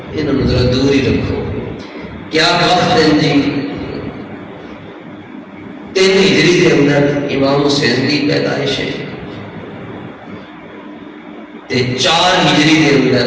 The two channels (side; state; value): both; identical; correlation 1.00